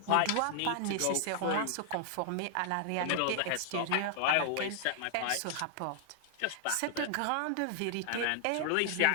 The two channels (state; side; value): different; both; correlation -0.01